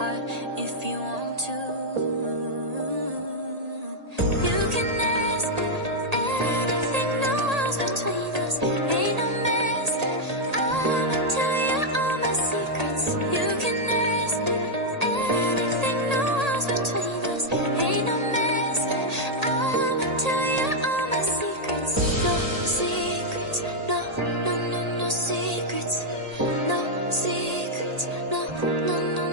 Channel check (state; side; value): late; left; 1.8 ms